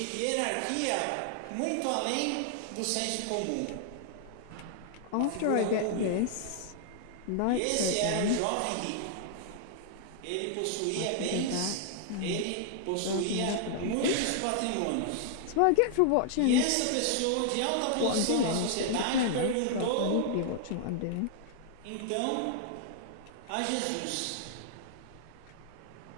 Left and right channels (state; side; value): different; both; correlation -0.01